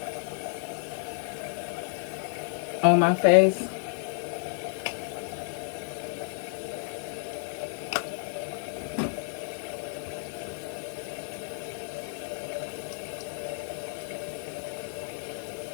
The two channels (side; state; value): right; silent; digital silence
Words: On my face.